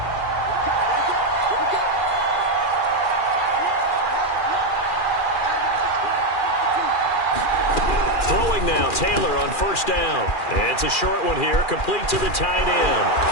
Now Taylor on first down. It's a short one here, complete to the tight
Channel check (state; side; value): late; right; 2.4 ms